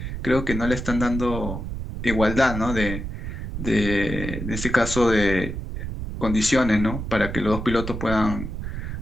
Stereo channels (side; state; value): right; noise; rumble, 6 dB below the sound